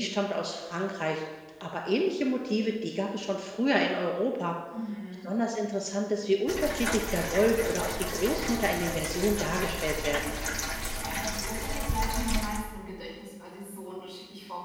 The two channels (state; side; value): identical; both; correlation 1.00